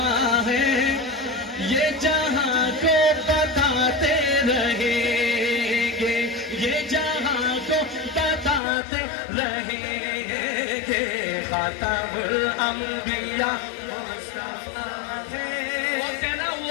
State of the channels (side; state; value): right; drops out; at 8.6 s